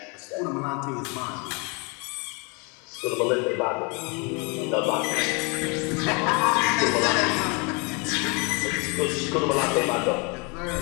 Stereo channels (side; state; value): right; quieter; 31.9 dB